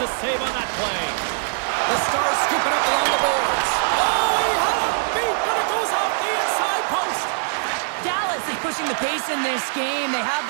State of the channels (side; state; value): left; silent; 64 dB below the other